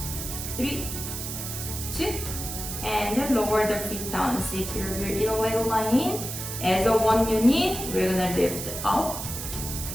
3, 2, and then lower the feet down. Secure your inner leg line. As a one unit, we're gonna lift up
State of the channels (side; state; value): right; noise; hiss, 6 dB below the sound